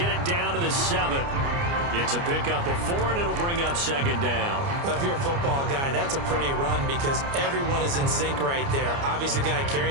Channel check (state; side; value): late; left; 29 ms